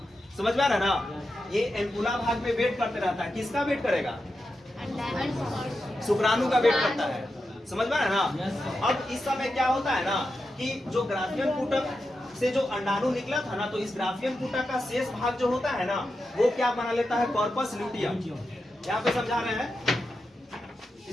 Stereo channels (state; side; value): normal; both; correlation 0.89